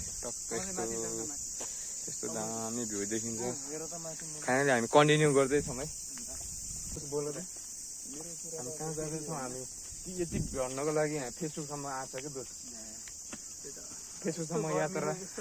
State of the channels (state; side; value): identical; both; correlation 1.00